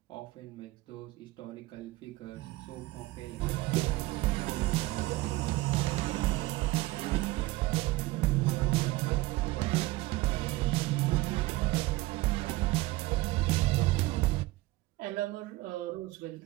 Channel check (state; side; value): quieter; left; 19.5 dB